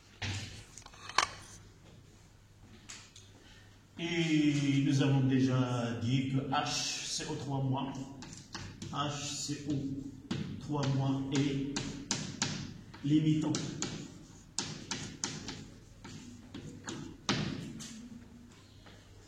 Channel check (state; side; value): identical; both; correlation 1.00